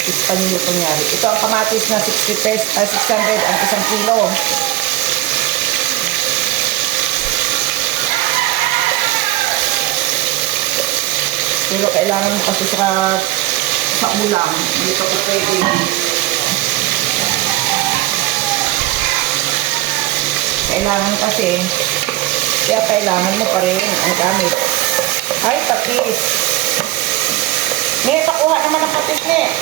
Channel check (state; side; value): quieter; left; 16.6 dB